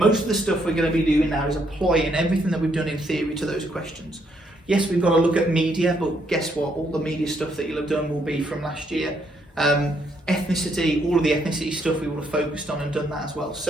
of the stuff we're going to be doing now is applying everything that we've done in theory to those questions. Yes, we've got to look at media, but guess what? All the media stuff that you'll have done will be from last year. Ethnicity, all of the ethnicity stuff we will have focused on and done that as well.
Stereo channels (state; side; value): normal; both; correlation 0.73